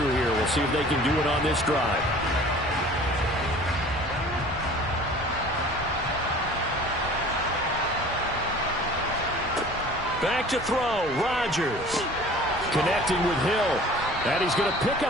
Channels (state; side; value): normal; both; correlation 0.46